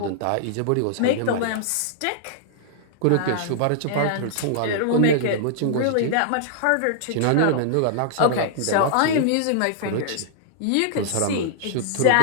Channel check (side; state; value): both; different; correlation -0.01